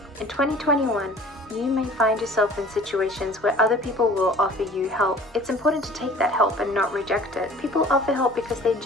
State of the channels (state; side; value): normal; both; correlation 0.47